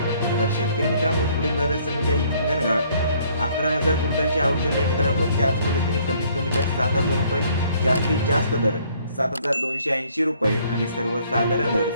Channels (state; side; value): inverted; both; correlation -0.62